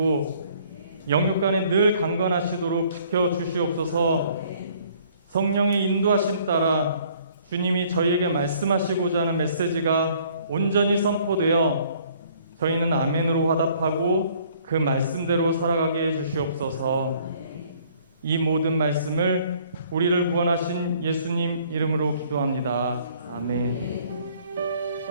영육간에 늘 강건하시도록 지켜주시옵소서. 성령의 인도하심 따라 주님이 저희에게 말씀하시고자 하는 메시지가 온전히 선포되어 저희는 아멘으로 화답하고 그 말씀대로 살아가게 해주시옵소서. 이 모든 말씀을 우리를 구원하신 예수님 이름으로 기도합니다. 아멘.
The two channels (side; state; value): both; inverted; correlation -0.59